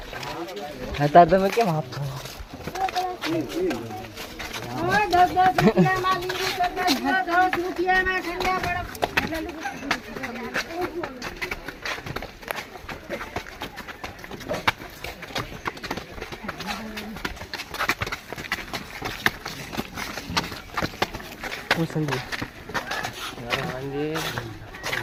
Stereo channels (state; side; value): identical; both; correlation 1.00